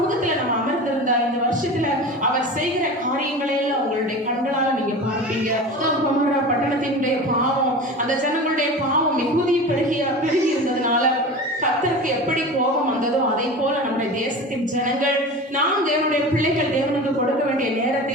நம்ம அமர்ந்திருந்தா இந்த வருஷத்துல அவர் செய்கிற காரியங்களை எல்லாம் உங்களுடைய கண்களால நீங்க பார்ப்பீங்க. பட்டணத்தினுடைய பாவம், அந்த ஜனங்களுடைய பாவம் மிகுதி பெருகி இருந்ததுனால கர்த்தருக்கு எப்படி கோபம் வந்ததோ அதை போல நம்முடைய தேசத்தின் ஜனங்கள், நாம் தேவனுடைய பிள்ளைகள் தேவனுக்கு கொடுக்க வேண்டிய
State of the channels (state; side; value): normal; both; correlation 0.32